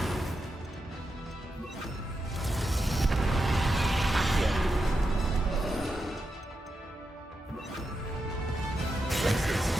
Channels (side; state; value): both; normal; correlation 0.87